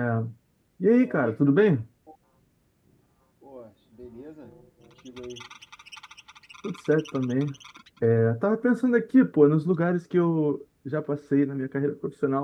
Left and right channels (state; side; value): identical; both; correlation 1.00